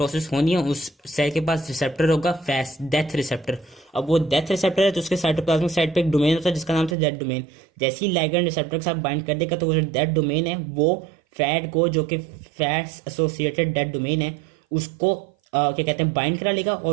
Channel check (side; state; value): left; drops out; at 7.0 s